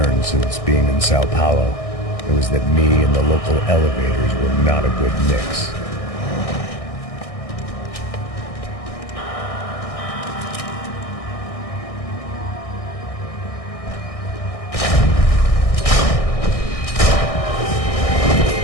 since being in Sao Paulo, it was that me and the local elevators were not a good mix.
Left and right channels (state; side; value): late; right; 1.6 ms